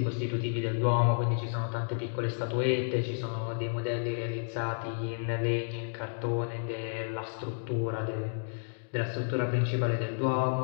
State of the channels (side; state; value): right; silent; digital silence